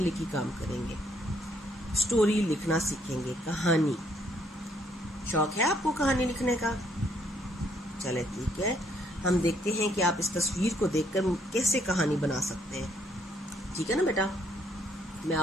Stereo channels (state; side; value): normal; both; correlation 0.69